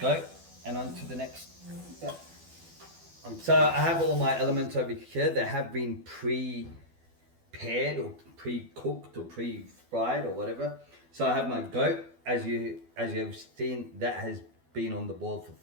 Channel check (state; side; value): late; left; 12 ms